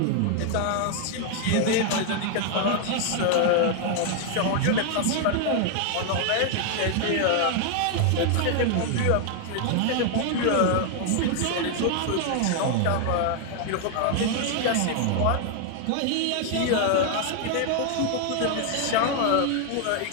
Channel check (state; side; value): different; both; correlation 0.00